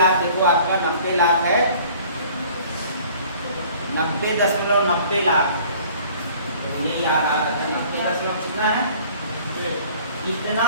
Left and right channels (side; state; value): both; inverted; correlation -0.52